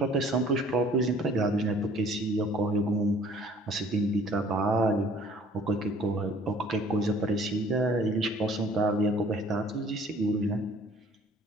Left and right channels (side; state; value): both; normal; correlation 0.54